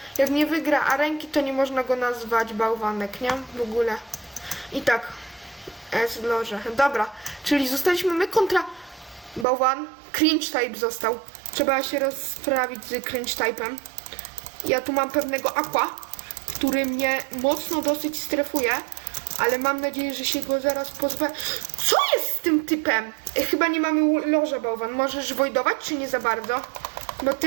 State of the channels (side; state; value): left; drops out; at 9.5 s